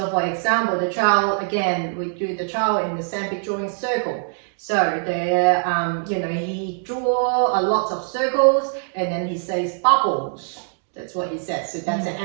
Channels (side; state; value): left; silent; digital silence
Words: for example, the child, again, we do the child in the sandpit drawing circle. So there, he draw a lot of circles and then he says bubbles. That's what he says. So that's the